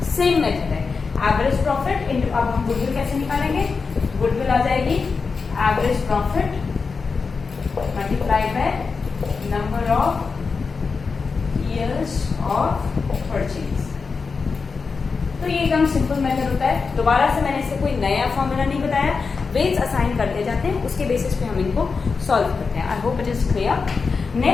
सेम मेथड है, एवरेज प्रॉफिट इंटू, अब हम गुडविल कैसे निकालेंगे, गुडविल आ जाएगी average profit multiplied by number of years of purchase. तो ये एकदम सिंपल मेथड होता है। दोबारा से मैंने इससे कोई नया फॉर्मूला नहीं बताया, वेट्स असाइन करते जाते हैं, उसके बेसिस पे हम इनको सॉल्व करते हैं। I hope it is clear.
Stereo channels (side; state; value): right; quieter; 4.9 dB